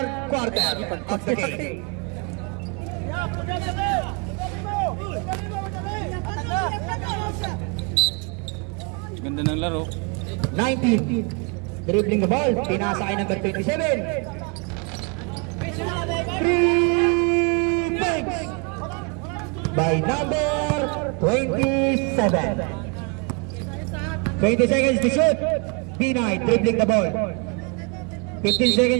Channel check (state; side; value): quieter; left; 33.8 dB